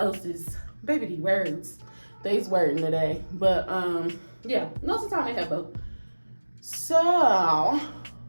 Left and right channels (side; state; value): both; inverted; correlation -1.00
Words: Baby, these words. They's wording today. But yeah, most of the time they have both. So,